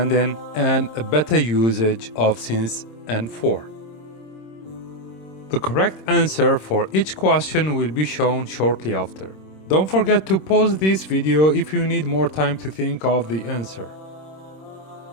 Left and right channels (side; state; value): right; late; 26 ms